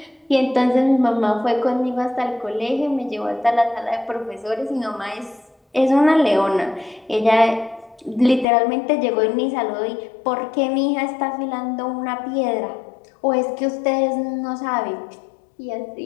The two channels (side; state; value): right; drops out; at 8.5 s